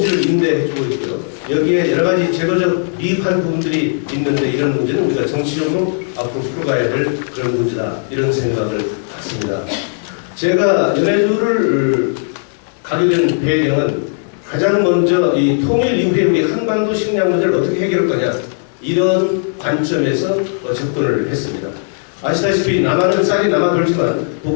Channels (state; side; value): silent; right; 69 dB below the other